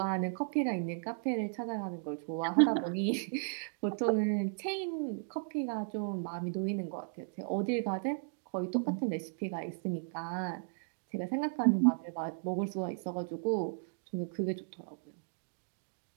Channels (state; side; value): silent; left; digital silence